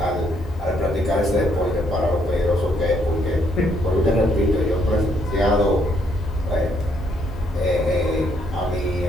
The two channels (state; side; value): normal; both; correlation 0.71